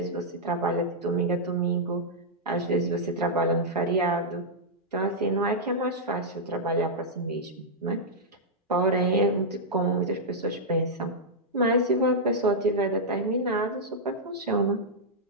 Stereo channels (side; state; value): both; normal; correlation -0.07